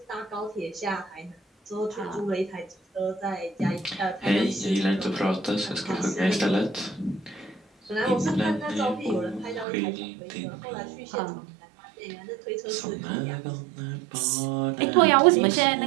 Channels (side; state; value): left; drops out; at 9.7 s